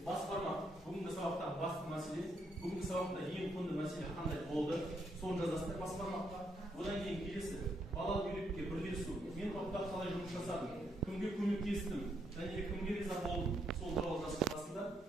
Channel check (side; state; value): both; normal; correlation 0.76